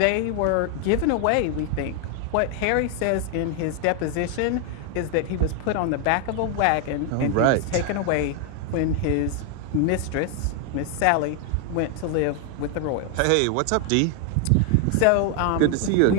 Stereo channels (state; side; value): different; both; correlation 0.00